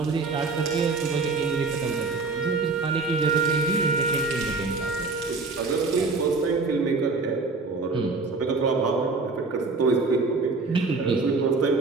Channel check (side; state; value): left; quieter; 3.9 dB